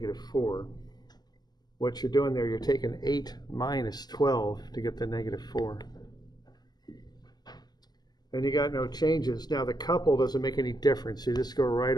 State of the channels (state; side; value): late; right; 0.20 ms